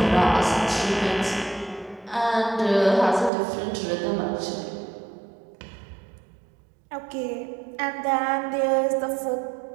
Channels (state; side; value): drops out; left; at 3.3 s